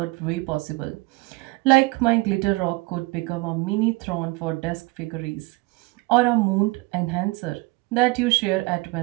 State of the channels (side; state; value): left; quieter; 24.3 dB